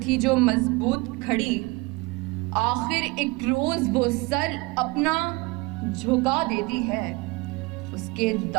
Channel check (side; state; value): left; quieter; 24.8 dB